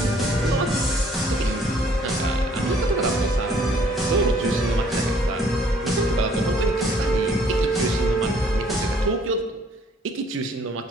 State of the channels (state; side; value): normal; both; correlation 0.60